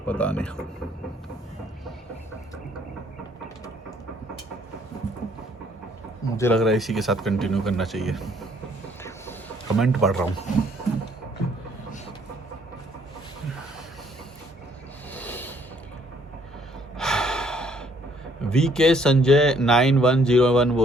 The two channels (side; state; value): both; normal; correlation 0.64